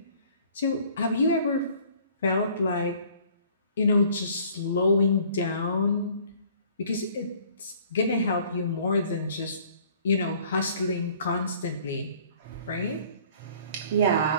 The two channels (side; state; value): both; inverted; correlation -0.55